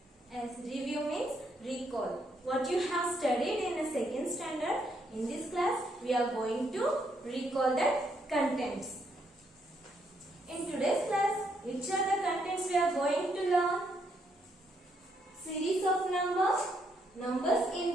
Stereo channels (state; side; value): normal; both; correlation 0.74